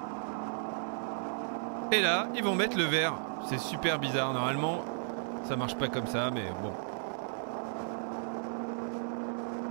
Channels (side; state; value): left; silent; digital silence